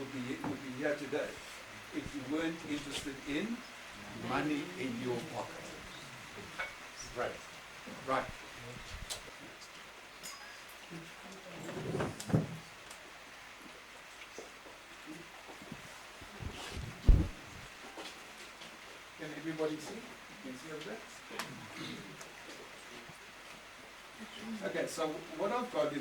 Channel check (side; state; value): both; identical; correlation 1.00